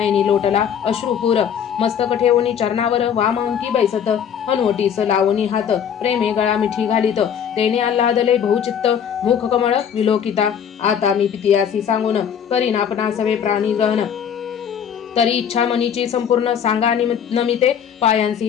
लोटला अश्रुपूर मस्तक ठेवणी चरणावर वाम अंकी बैसत हनुवटीस लावणी हात प्रेमे गळा मिठी घालीत तेने आल्हादले बहुचित्त मुख कमळ विलोकिता आता मी पितियासी सांगून करीन आपणा सवे प्राणी ग्रहण तरी इच्छा मनीची संपूर्ण सांगा नमिते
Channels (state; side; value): quieter; right; 8.3 dB